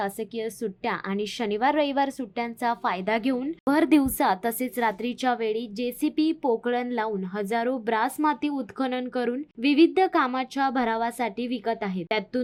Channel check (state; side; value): identical; both; correlation 1.00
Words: सुट्ट्या आणि शनिवार रविवार सुट्ट्यांचा फायदा घेऊन भर दिवसा तसेच रात्रीच्या वेळी जेसीबी पोकळण लावून हजारो ब्रास माती उत्खनन करून विविध कामाच्या भरावासाठी विकत आहेत।